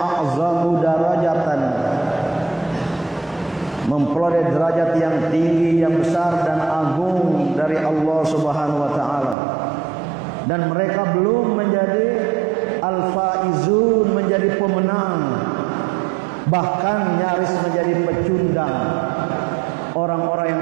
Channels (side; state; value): left; drops out; at 9.3 s